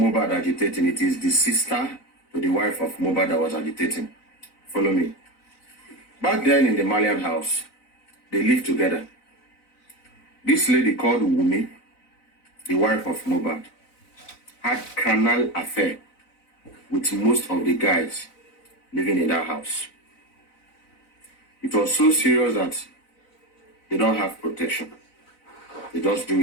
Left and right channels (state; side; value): late; right; 4.0 ms